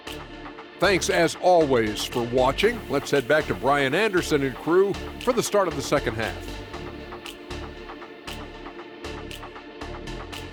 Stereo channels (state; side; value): identical; both; correlation 1.00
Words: Thanks as always for watching. Let's head back to Brian Anderson and crew for the start of the second half.